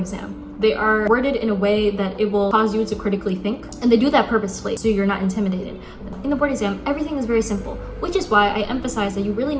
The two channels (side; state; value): both; identical; correlation 1.00